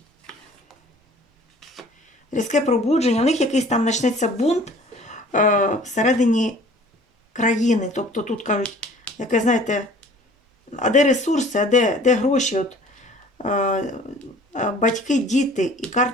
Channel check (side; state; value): both; normal; correlation 0.50